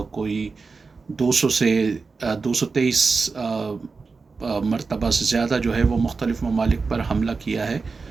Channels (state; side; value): quieter; left; 4.5 dB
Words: 200 से 223 मरतबा से ज़्यादा जो है वो मुख्तलिफ़ ममालिक पर हमला किया है।